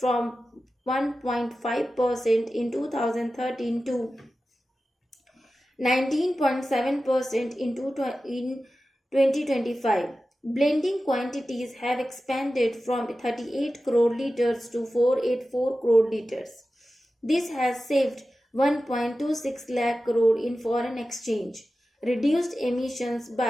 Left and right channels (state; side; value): normal; both; correlation 0.94